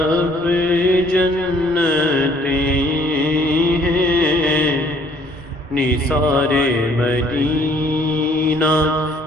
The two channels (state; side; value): normal; both; correlation 0.60